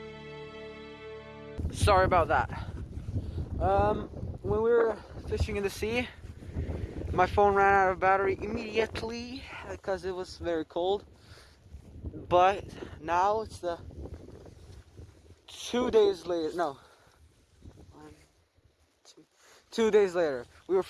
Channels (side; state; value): both; identical; correlation 1.00